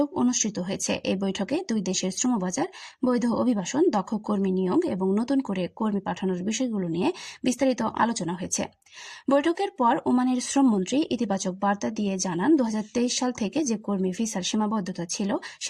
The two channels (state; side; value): identical; both; correlation 1.00